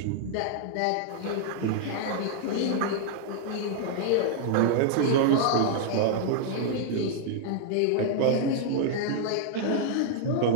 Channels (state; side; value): different; both; correlation -0.01